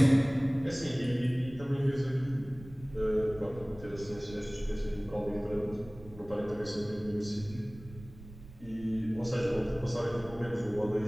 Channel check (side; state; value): right; noise; rumble, 17 dB below the sound